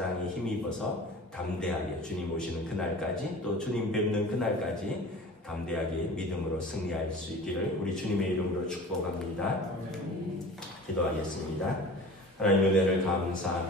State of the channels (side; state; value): both; normal; correlation 0.40